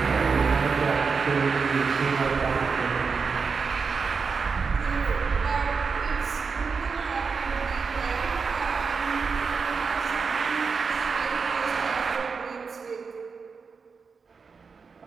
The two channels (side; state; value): left; quieter; 5.2 dB